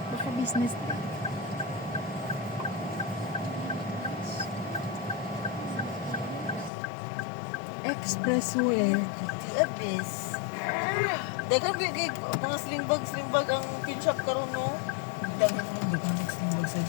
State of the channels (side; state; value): right; drops out; at 6.7 s